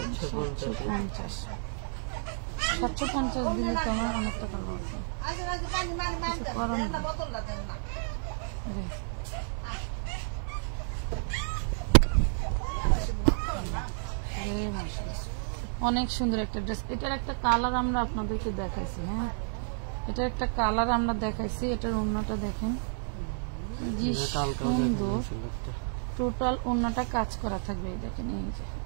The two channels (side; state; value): left; silent; 57 dB below the other